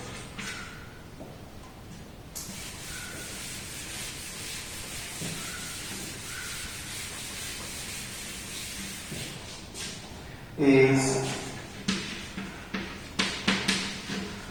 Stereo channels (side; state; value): both; identical; correlation 1.00